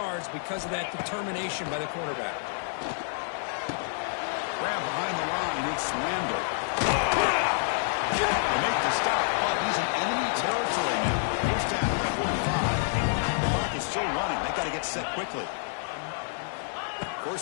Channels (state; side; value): silent; right; digital silence